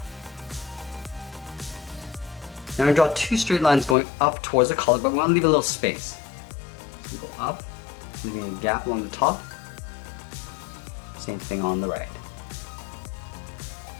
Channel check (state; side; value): drops out; right; at 4.0 s